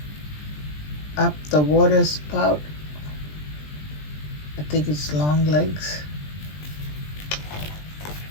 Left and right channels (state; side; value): late; right; 20 ms